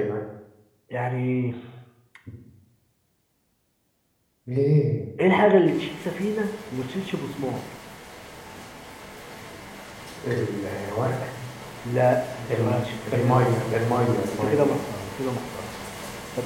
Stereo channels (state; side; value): identical; both; correlation 1.00